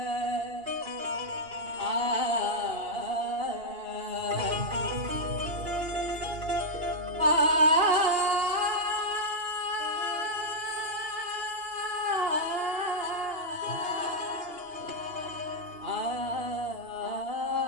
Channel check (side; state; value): left; late; 2.8 ms